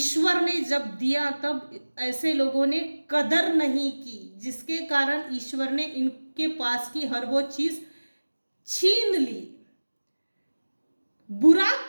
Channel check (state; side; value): inverted; both; correlation -1.00